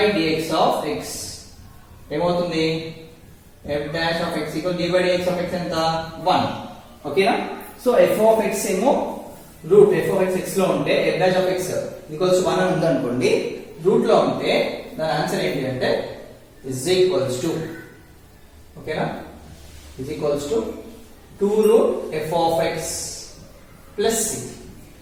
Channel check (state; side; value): identical; both; correlation 1.00